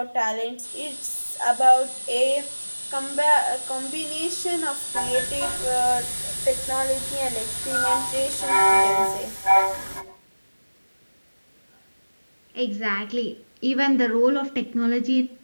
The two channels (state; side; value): inverted; both; correlation -1.00